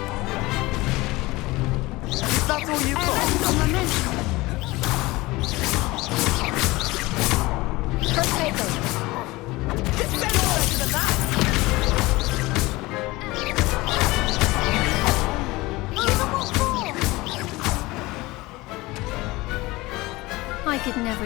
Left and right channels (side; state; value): right; quieter; 21.0 dB